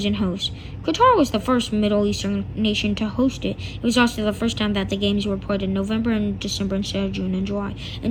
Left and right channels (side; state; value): both; identical; correlation 1.00